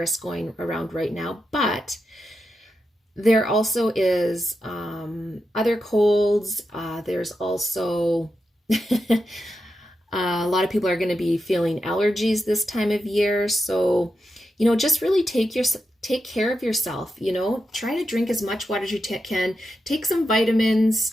going around right now, but there also is other colds. There's also a lot of people are going to be feeling allergies this time of year. So, you know, just really take care of yourself. You know, try to drink as much water as you can. Take some vitamins.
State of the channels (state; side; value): normal; both; correlation 0.88